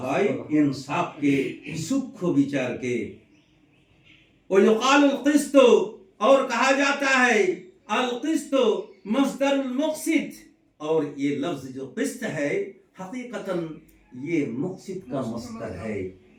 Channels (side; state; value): both; identical; correlation 1.00